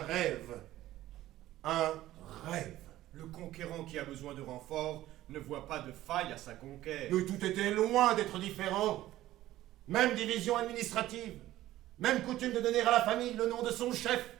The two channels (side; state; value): left; quieter; 15.0 dB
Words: Un rêve. Le conquérant qui a besoin de renfort ne voit pas de faille à sa conquête. Mais tout était loin d'être différent. Même division administrative, même coutume de donner à la famille le nom de son chef,